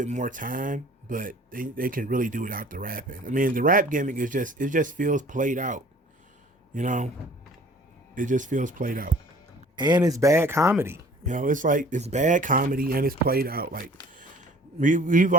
more time, but they can really do without the rapping. I mean, the rap gimmick it just feels played out. It just feels played out, and it's bad comedy. It's like it's bad comedy and it's played out. Like, we've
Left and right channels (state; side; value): normal; both; correlation 0.50